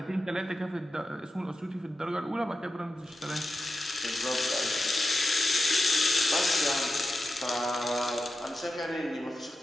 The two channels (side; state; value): both; normal; correlation 0.91